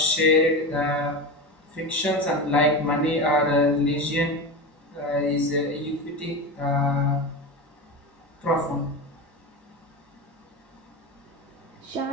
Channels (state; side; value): normal; both; correlation 0.23